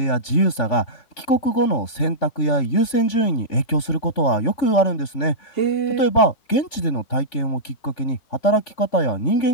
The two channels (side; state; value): right; late; 3.5 ms